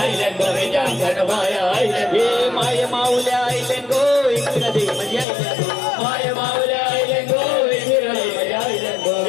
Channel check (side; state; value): right; drops out; at 5.2 s